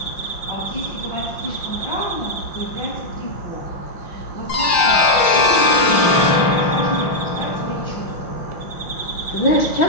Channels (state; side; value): late; right; 5.7 ms